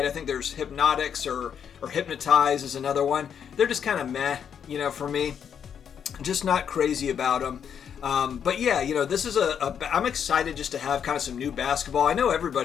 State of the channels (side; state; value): right; quieter; 8.0 dB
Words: I think there's Hypnotics or Hypnotize is another one. They're just kind of meh, for me. Just not crazy about them. But yeah, this is I'm excited just to have kind of some new basketball. I know